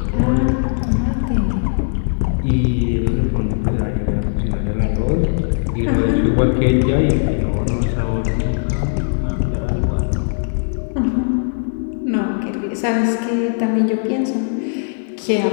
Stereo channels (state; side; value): silent; right; digital silence